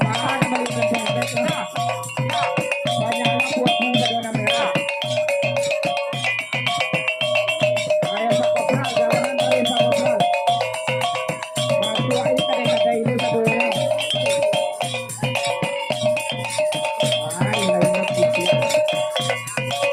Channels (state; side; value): identical; both; correlation 1.00